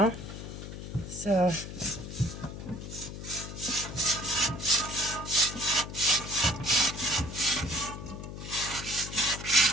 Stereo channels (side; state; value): left; noise; hum, 9 dB below the sound